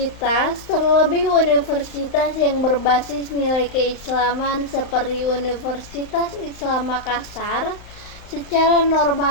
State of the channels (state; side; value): late; right; 35 ms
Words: terlebih universitas yang berbasis nilai keislaman seperti Universitas Islam Makassar, secara